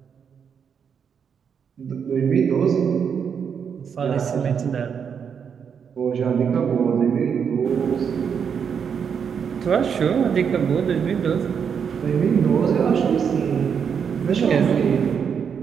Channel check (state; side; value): quieter; left; 7.1 dB